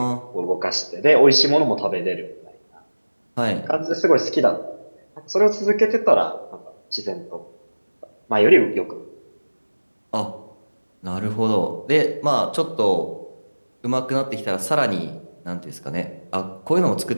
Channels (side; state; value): both; inverted; correlation -1.00